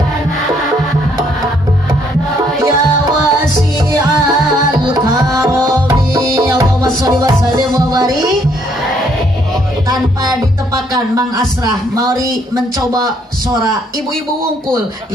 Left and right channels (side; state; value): both; normal; correlation 0.68